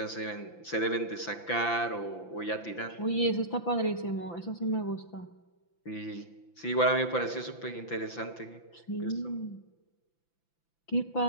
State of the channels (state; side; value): late; right; 5.9 ms